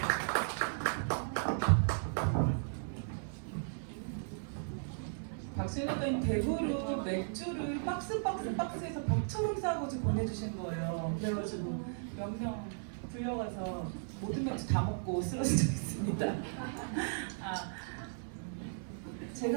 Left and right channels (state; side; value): silent; left; 54 dB below the other